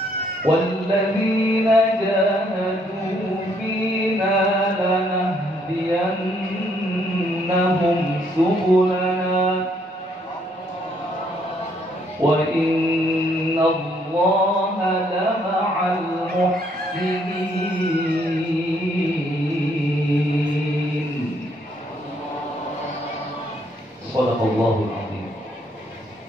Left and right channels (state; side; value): normal; both; correlation 0.69